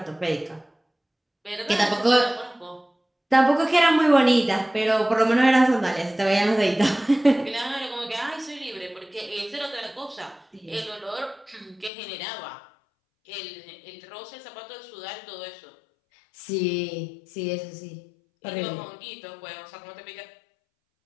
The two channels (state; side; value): drops out; right; at 11.9 s